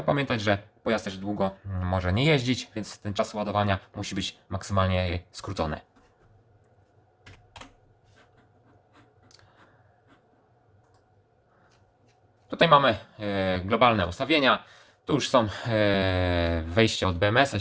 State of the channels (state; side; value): identical; both; correlation 1.00